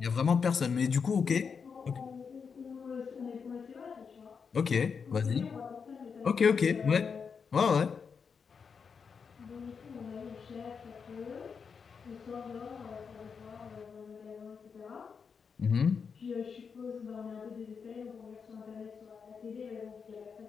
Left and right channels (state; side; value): quieter; right; 6.0 dB